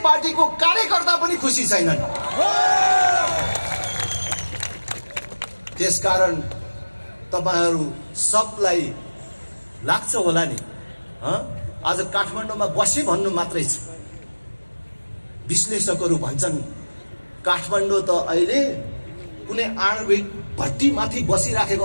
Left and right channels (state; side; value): inverted; both; correlation -1.00